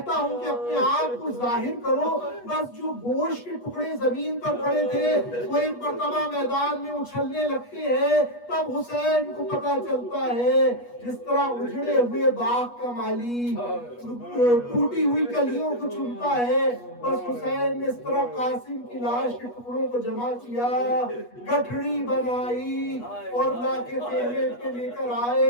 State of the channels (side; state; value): right; late; 8.3 ms